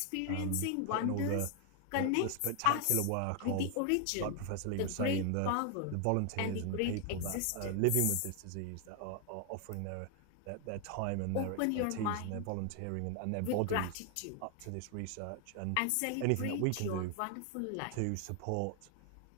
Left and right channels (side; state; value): both; different; correlation 0.00